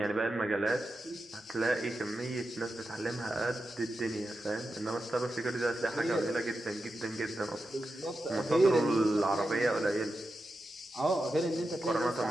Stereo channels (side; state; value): both; normal; correlation 0.90